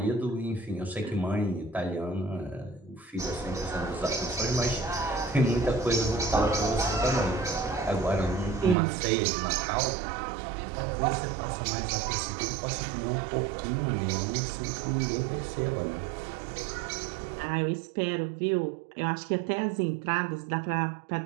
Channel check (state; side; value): drops out; left; at 8.8 s